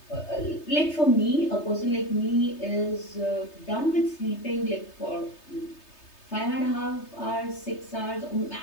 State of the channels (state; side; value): late; right; 3.3 ms